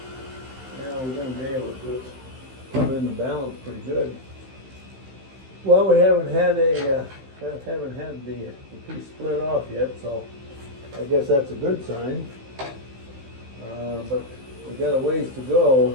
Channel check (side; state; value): left; late; 15 ms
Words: Yeah, we're going to be able to come in the balance pretty good. Well, we haven't had the piece split off yet, so I guess that's a good sign. But we got a ways to